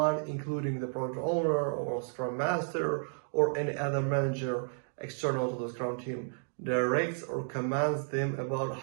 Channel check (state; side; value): silent; left; digital silence